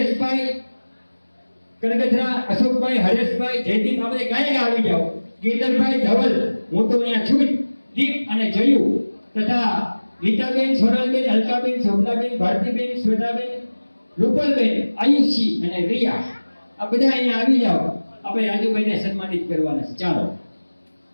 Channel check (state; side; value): inverted; both; correlation -1.00